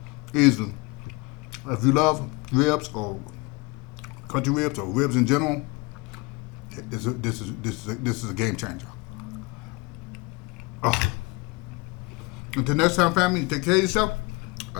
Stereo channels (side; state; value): right; quieter; 27.0 dB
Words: easily. If you love ribs or country ribs or ribs in general, this is a game changer. Oh. Until next time, family, take care of yourself.